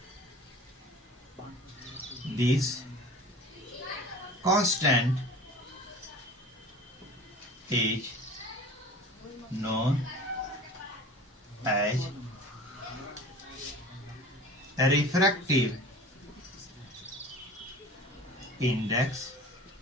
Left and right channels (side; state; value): both; normal; correlation 0.40